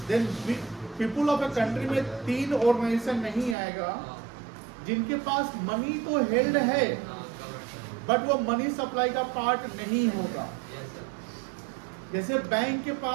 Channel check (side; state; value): left; drops out; at 3.6 s